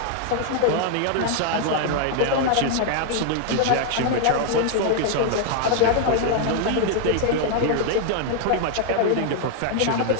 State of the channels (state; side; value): different; both; correlation 0.00